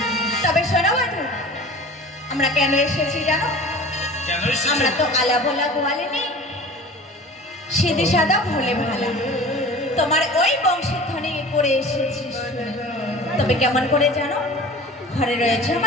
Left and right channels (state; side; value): normal; both; correlation 0.40